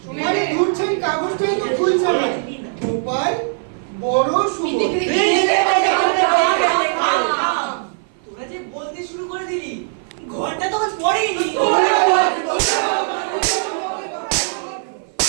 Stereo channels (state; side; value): silent; left; 55 dB below the other